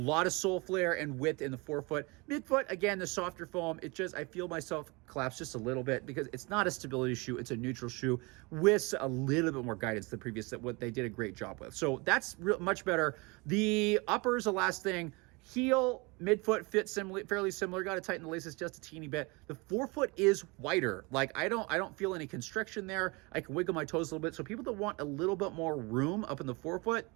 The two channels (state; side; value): quieter; left; 27.1 dB